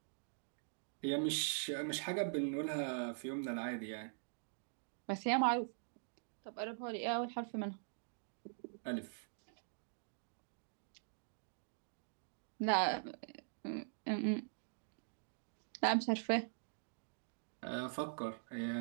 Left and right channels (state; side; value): silent; left; digital silence